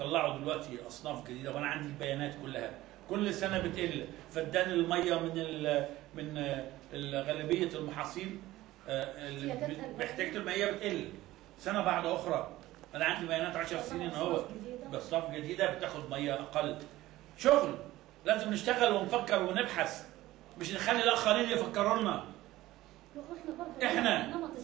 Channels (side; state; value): left; quieter; 16.6 dB